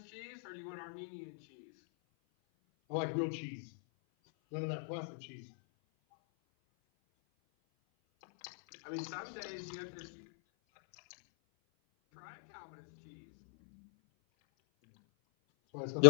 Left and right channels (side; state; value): right; silent; 53 dB below the other